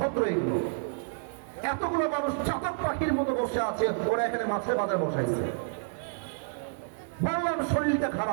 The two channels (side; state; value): left; silent; 58 dB below the other